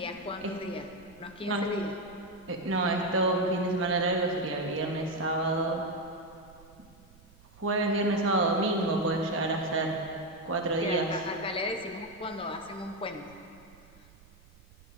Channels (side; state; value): right; noise; rumble, 24 dB below the sound